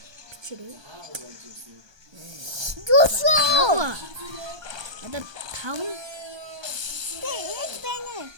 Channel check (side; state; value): left; late; 1.2 ms